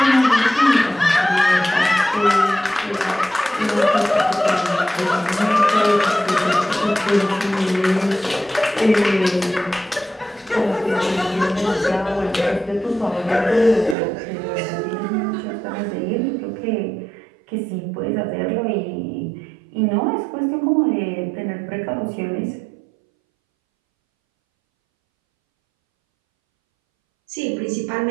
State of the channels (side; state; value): left; drops out; at 14.0 s